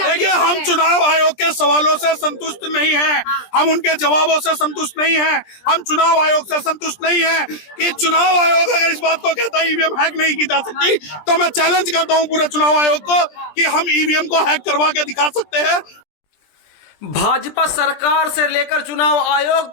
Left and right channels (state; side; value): late; right; 20 ms